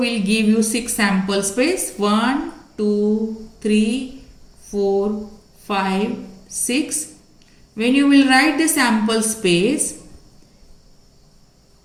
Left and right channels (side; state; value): both; identical; correlation 1.00